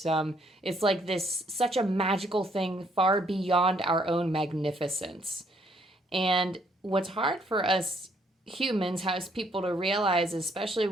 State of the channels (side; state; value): both; normal; correlation 0.68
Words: it's like this, such a magical thing far beyond our own magnificence. And what's hard for us humans, as people to realize, especially